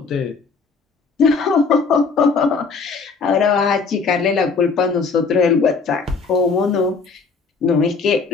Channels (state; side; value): quieter; right; 4.8 dB